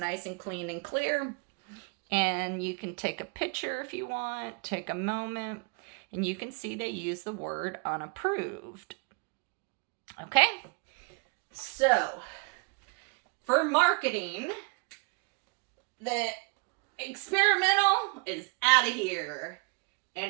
and clean and clear. And you can take a picture if you want, take a moment, and you can see they use the word unapproved. Okay? So, for marketing, the experimental is out of here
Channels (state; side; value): quieter; left; 32.8 dB